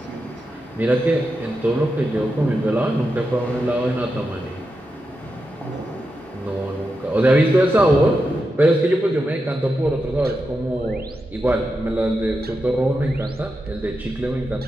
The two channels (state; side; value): normal; both; correlation 0.88